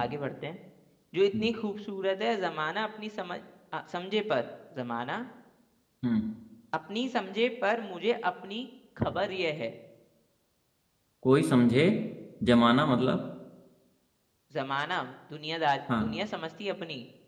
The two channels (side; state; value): both; identical; correlation 1.00